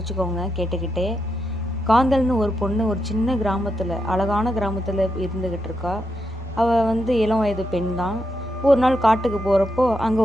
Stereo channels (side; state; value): both; normal; correlation 0.84